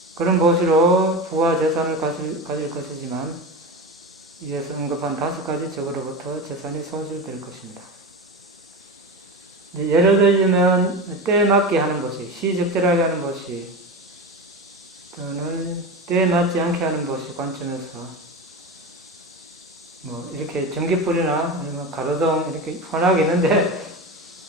그런 보시로 부와 재산을 가질 것이지만 이에서 언급한 5가지 적으로부터 재산이 손실될 것입니다. 예를 들자면 때에 맞게 하는 보시, 시적절하게 하는 보시, 또는 때에 맞지 않게 하는 보시 관점에서 이렇게 전기불이나 아니면 가로등 이렇게 환하게 있는데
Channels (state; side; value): normal; both; correlation 0.24